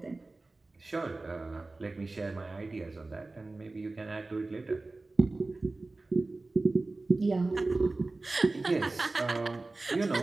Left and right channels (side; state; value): left; quieter; 3.3 dB